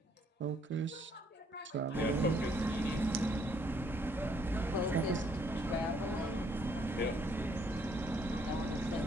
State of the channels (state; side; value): normal; both; correlation 0.68